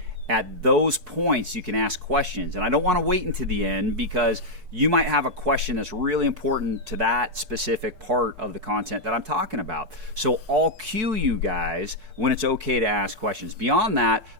At those points, you can ask questions. And I don't want to wait until the end, because you might have a question that's really important to that specific part of the content that I'm talking about. So I'll cue you guys when it's okay to ask questions. Beyond that,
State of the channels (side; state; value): left; late; 4.6 ms